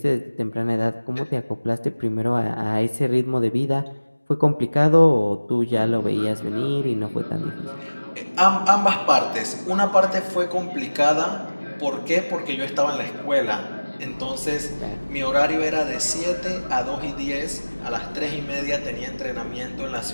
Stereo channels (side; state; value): both; inverted; correlation -1.00